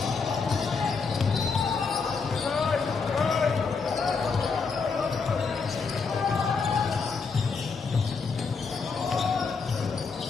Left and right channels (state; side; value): quieter; right; 5.0 dB